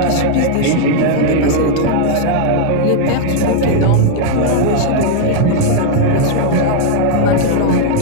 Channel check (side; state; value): both; different; correlation 0.00